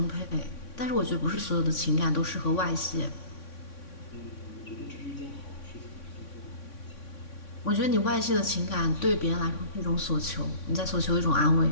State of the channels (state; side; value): late; right; 3.6 ms